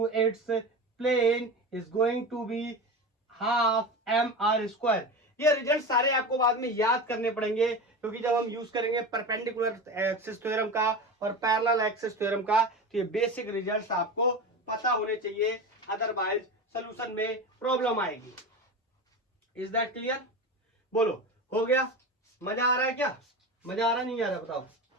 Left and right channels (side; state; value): both; normal; correlation 0.26